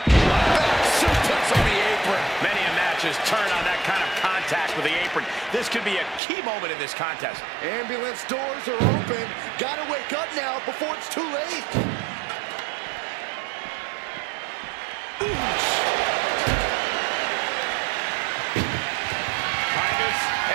Suplex on the apron. Many a match has turned on that kind of contact with the apron. This could be a key moment in this contest. Ambulance doors are open. Gotta wake up now before it's too late. Titus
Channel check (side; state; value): left; drops out; at 6.2 s